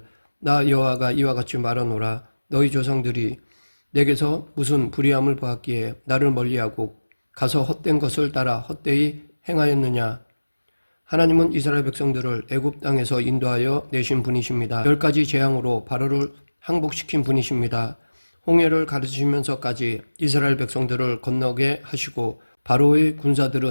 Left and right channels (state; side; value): inverted; both; correlation -1.00